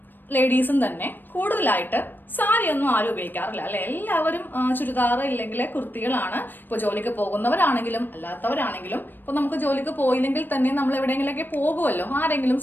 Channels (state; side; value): late; right; 0.093 ms